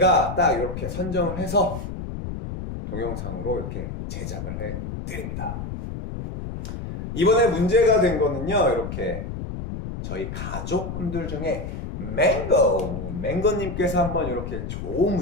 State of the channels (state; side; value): noise; left; rumble, 6 dB below the sound